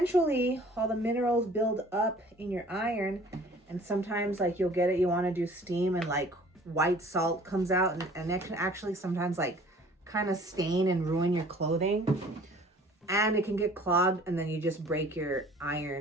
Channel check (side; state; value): both; normal; correlation 0.51